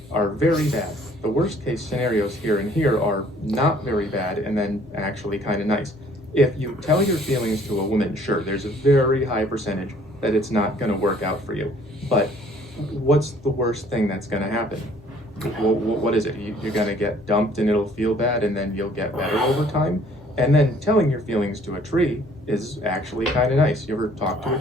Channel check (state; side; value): normal; both; correlation 0.58